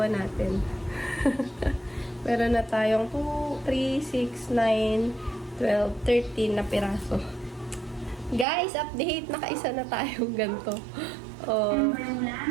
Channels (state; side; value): drops out; left; at 8.5 s